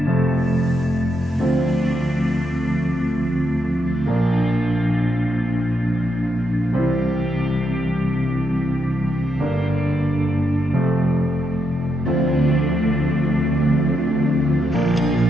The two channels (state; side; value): normal; both; correlation 0.81